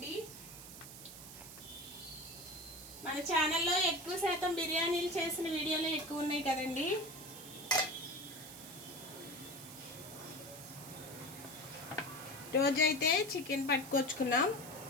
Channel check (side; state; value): right; noise; hiss, 13 dB below the sound